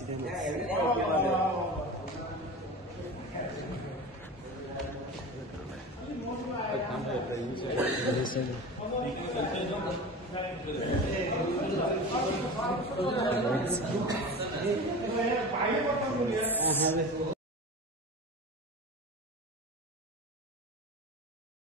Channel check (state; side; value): normal; both; correlation 0.31